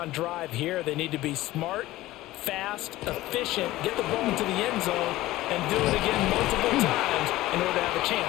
drive here. They need to be smart, fast, efficient, get the ball into the end zone, and do it again multiple times in order to have a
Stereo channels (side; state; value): right; quieter; 16.9 dB